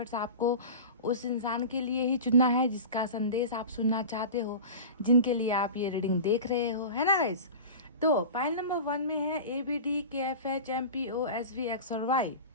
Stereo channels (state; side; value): inverted; both; correlation -0.32